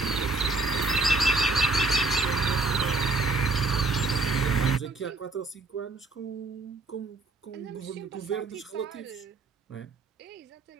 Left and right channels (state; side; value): quieter; left; 3.3 dB